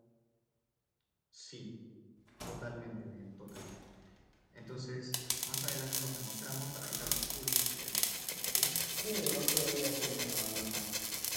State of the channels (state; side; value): identical; both; correlation 1.00